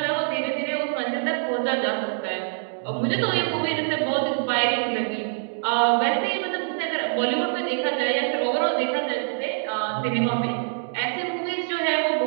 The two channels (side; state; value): left; silent; digital silence